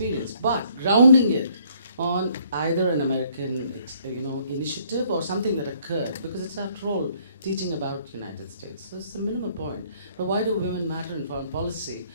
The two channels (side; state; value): both; inverted; correlation -0.64